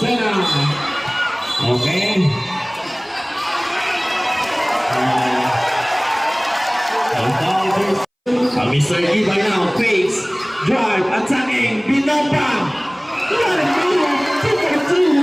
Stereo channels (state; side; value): identical; both; correlation 1.00